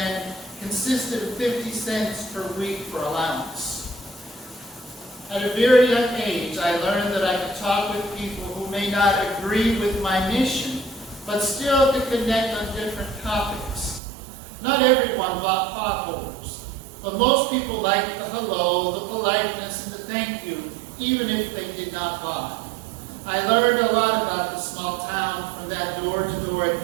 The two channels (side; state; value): left; drops out; at 14.0 s